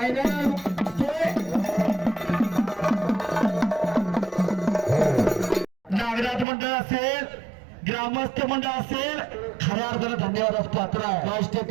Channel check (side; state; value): left; drops out; at 6.5 s